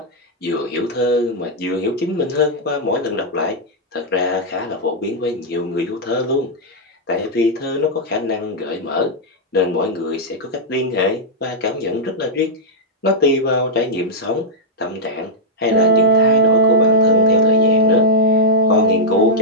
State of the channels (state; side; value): normal; both; correlation -0.05